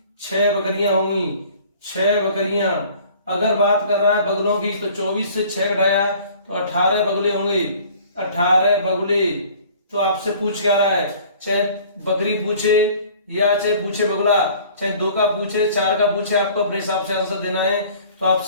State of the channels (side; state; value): both; inverted; correlation -0.50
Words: 6 बकरियां होंगी, 6 बकरियां। अगर बात कर रहा है बगुलों की तो 24 से 6 घटाया तो 18 बगुले होंगे, 18 बगुले। तो आपसे पूछ क्या रहा है, चाहे बकरी पूछे या चाहे पूछे बगुला, चाहे 2 का पूछे 4 का पूछे, आपको अपने हिसाब से आंसर देना है। तो